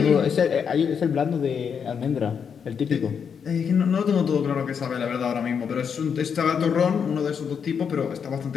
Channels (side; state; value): right; quieter; 6.9 dB